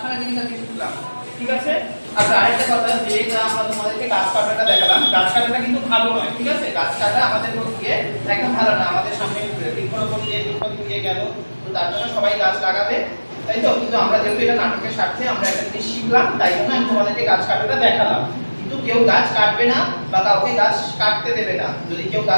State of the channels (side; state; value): both; inverted; correlation -1.00